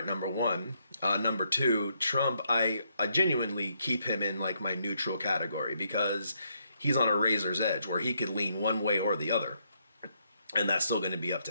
number one. Number two, Trump, I genuinely keep him in like my neutral category, because he's on a razor's edge where he could lean one way or the other, and that's still going to be up to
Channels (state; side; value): inverted; both; correlation -0.75